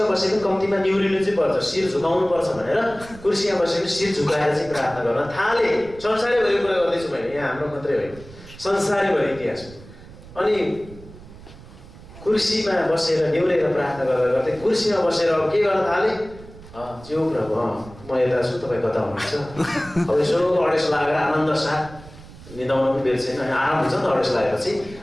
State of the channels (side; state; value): right; noise; rumble, 19 dB below the sound